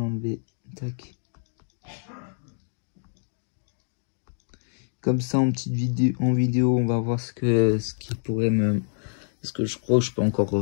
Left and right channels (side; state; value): right; silent; digital silence